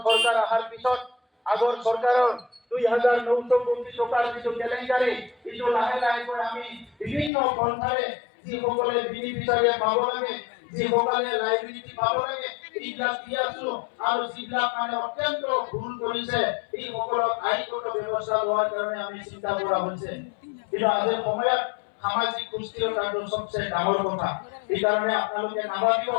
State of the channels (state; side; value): drops out; right; at 7.3 s